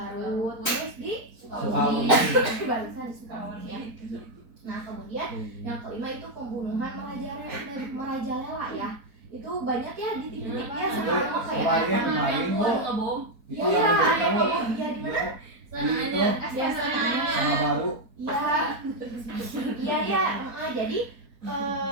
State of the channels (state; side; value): late; left; 4.4 ms